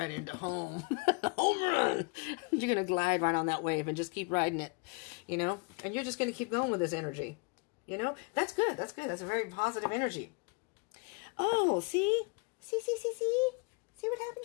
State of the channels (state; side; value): quieter; right; 31.7 dB